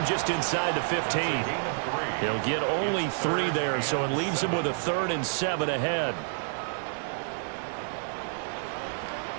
just inside the 15. He'll get only 3 there, so it leaves him with a 3rd and 7 ahead.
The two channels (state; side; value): silent; left; digital silence